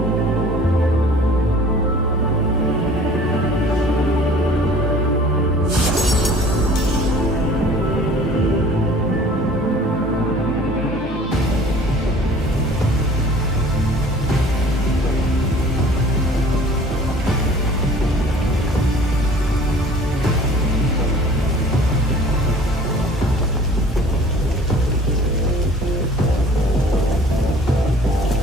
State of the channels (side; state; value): both; normal; correlation 0.49